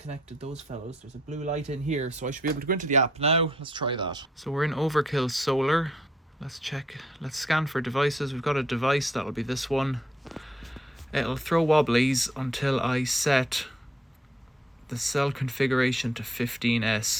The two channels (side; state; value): both; normal; correlation 0.70